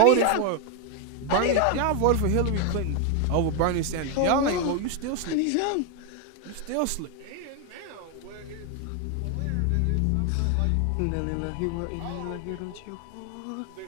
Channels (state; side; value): different; both; correlation 0.01